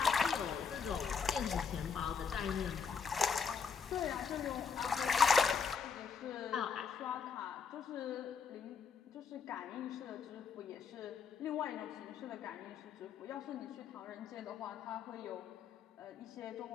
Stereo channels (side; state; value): right; quieter; 6.0 dB